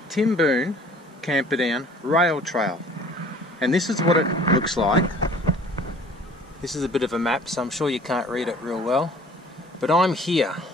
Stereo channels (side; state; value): both; normal; correlation 0.50